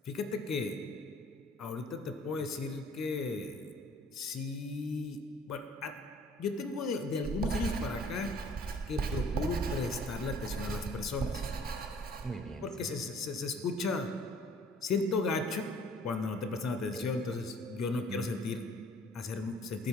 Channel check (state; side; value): normal; both; correlation 0.55